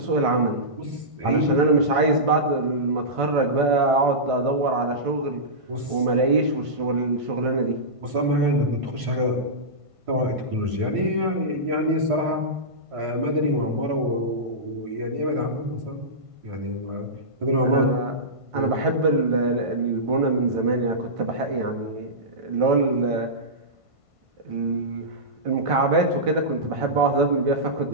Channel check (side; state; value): left; late; 1.5 ms